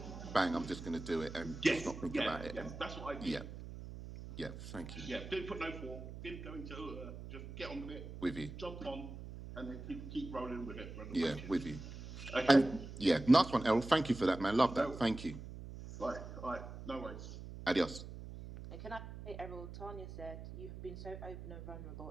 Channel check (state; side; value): noise; right; hum, 11 dB below the sound